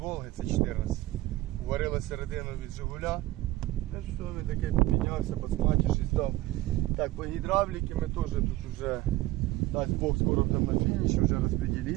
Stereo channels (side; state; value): left; quieter; 17.4 dB